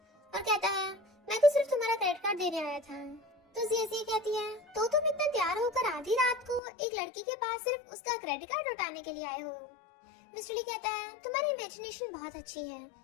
और कहता है, मैं तो सिर्फ तुम्हारा क्रेडिट कार्ड देने आया था। तो जिया कहती है, तो तुम इतना तैयार होकर आधी रात को एक लड़की के पास सिर्फ उसका क्रेडिट कार्ड लौटाने के लिए आए हो। मिस्टर ली कहता है, तुम्हारी इमेजिनेशन बहुत अच्छी है।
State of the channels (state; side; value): drops out; right; at 6.6 s